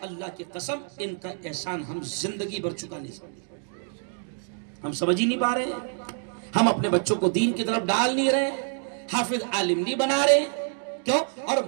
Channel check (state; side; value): silent; left; 57 dB below the other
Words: اللہ کی قسم ان کا احسان ہم زندگی بھر چکا نہیں سکتے۔ ہم سمجھ ہی نہیں پا رہے ہیں، ہم اپنے بچوں کو دین کی طرف ڈال نہیں رہے، حافظ عالم نہیں بنا رہے، کیوں؟ اور